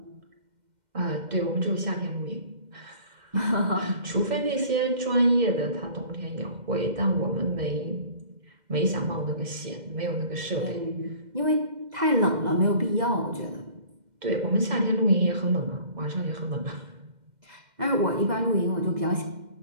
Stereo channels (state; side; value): late; left; 2.1 ms